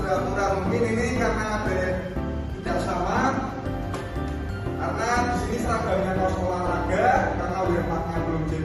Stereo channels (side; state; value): both; identical; correlation 1.00